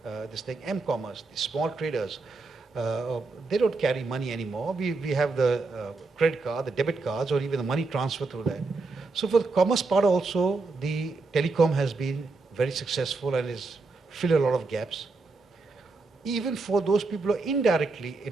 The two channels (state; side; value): quieter; left; 3.8 dB